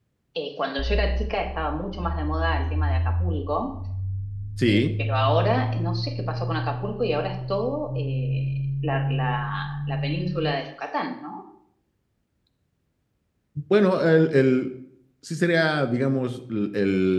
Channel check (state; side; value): identical; both; correlation 1.00